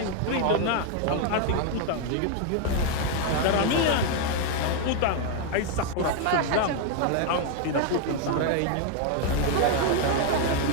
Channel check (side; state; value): both; different; correlation 0.00